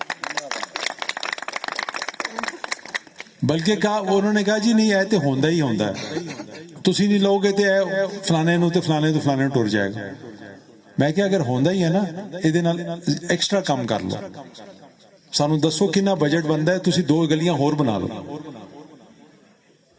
بلکہ انہوں نے کہا جی نہیں اے تے ہوندا ہی ہوندا ہے، تسی نہیں لوگے تے فلانے نو تے فلانے تو فلانے ٹر جائے گا. میں کہ اگر ہوندا ہی ہے نا، ایدے نال ایکسٹرا کم کر لو، سانو دسو کنا بجٹ بندا ہے، تسی 2 گلیاں ہور بنا لو.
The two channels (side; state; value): both; identical; correlation 1.00